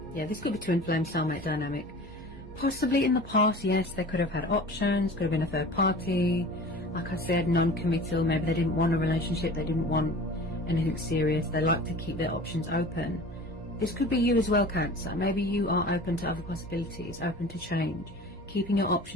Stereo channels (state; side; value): normal; both; correlation 0.40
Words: Yeah, this could be twin flame soulmate dynamic. Possibly in the past, yes, they could have had options, could have been a third party. Like I said, non-committal. Maybe they didn't want a relationship, they didn't want anything serious. They like to keep their options open. This could be you as well, Cancer. Maybe you are open to other possibilities, open to change, keeping your